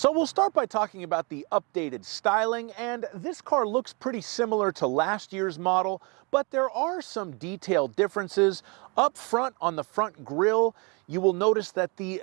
we'll start by talking about the updated styling, and this car looks pretty similar to last year's model, but there are some detailed differences. Up front on the front grille, you will notice that the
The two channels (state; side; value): quieter; left; 31.1 dB